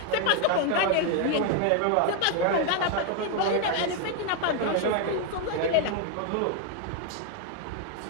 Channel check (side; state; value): both; different; correlation 0.01